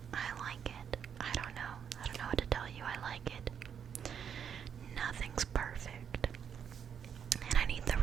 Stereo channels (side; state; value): left; quieter; 7.8 dB